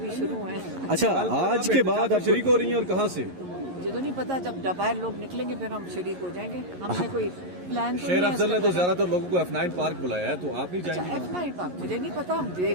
शुरू है। अच्छा, आज के बाद आप शरीक हो रही हैं और कहाँ से? मुझे तो नहीं पता, जब बाहर लोग निकलेंगे फिर हम शरीक हो जाएंगे। हमने कोई प्लान तो शेर नहीं है अफजल ने इसका। तो ज्यादातर लोगों को F9 पार्क बुलाया है, तो आप नहीं अच्छा, जाएंगे? F9 पार्क मुझे नहीं पता, हम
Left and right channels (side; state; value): left; late; 11 ms